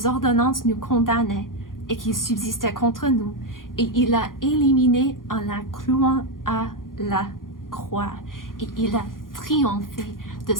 ordonnances nous condamnaient et qui subsistait contre nous, et il a éliminé en la clouant à la croix. Et il a triomphé de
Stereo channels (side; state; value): right; late; 0.90 ms